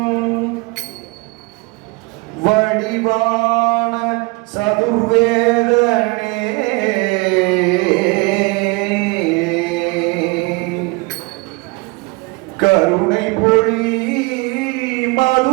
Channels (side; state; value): left; quieter; 26.1 dB